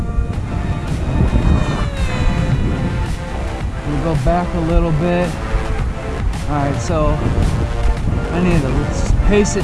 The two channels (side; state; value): both; identical; correlation 1.00